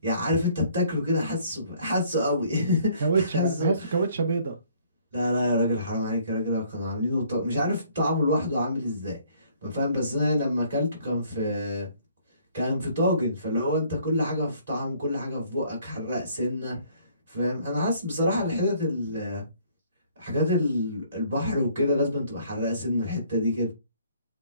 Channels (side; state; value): both; inverted; correlation -0.61